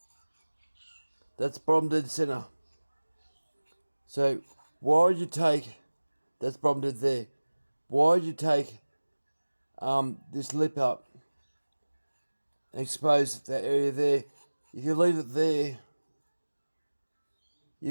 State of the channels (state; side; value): inverted; both; correlation -1.00